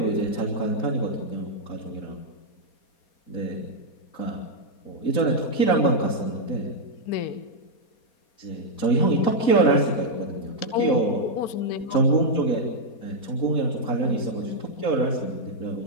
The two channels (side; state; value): right; late; 4.0 ms